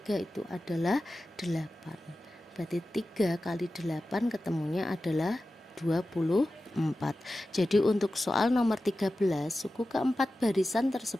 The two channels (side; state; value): both; normal; correlation 0.94